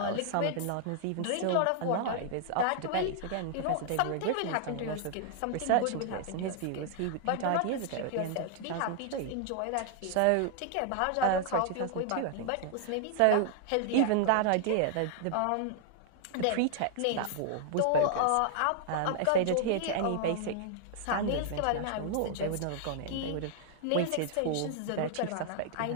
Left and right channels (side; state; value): both; different; correlation -0.01